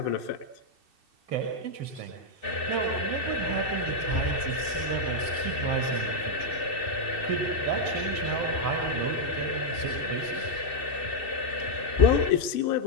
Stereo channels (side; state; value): right; late; 2.6 ms